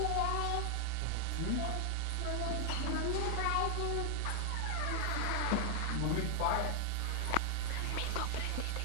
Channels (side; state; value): both; different; correlation 0.00